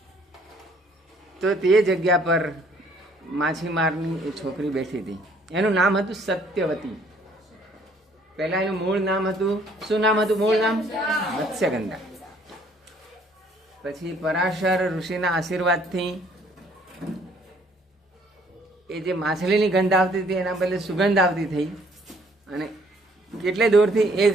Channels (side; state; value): both; normal; correlation 0.61